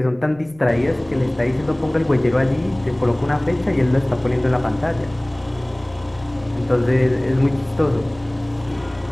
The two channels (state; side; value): noise; right; rumble, 25 dB below the sound